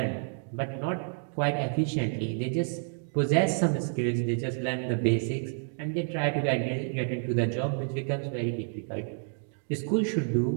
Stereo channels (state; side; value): silent; left; 56 dB below the other